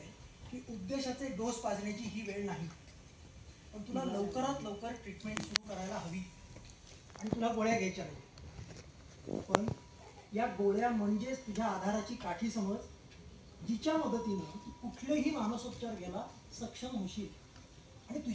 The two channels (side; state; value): both; identical; correlation 1.00